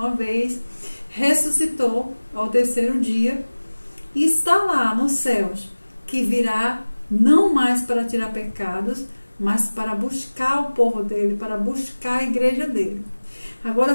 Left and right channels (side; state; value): both; inverted; correlation -1.00